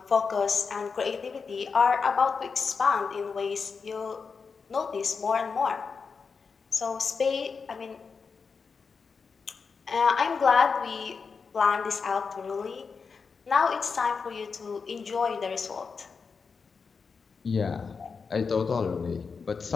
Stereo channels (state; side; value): quieter; right; 5.3 dB